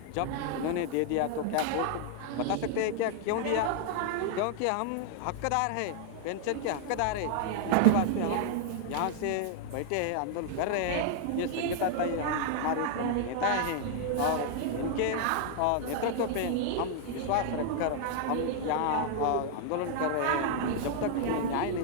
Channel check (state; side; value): different; both; correlation 0.00